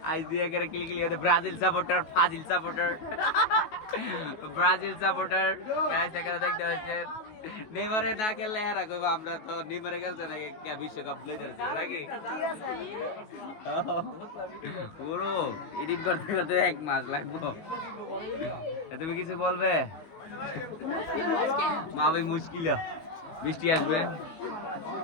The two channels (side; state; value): right; late; 19 ms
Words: ব্রাজিল সাপোর্টার দেখতে পাচ্ছেন নেইমারে না খেললে হেরা কইবা আমরা তো নেইমারে খেলছে নাকি বিশ্বকাপ লইতে নাকি পুরো এডিট করতে করতে 1 মাস লাগবো তুমি কিছু বলবে মা ভাই মুশকিল বৃষ্টি আসবে